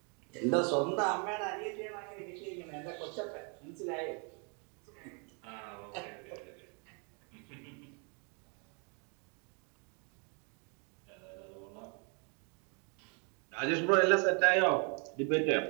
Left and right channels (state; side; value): quieter; left; 36.8 dB